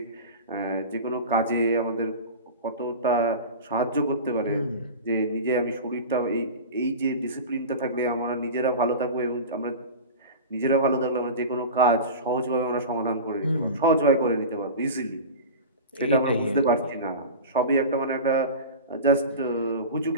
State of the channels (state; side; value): inverted; both; correlation -0.30